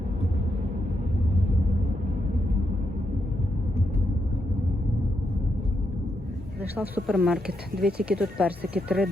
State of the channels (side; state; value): both; normal; correlation 0.82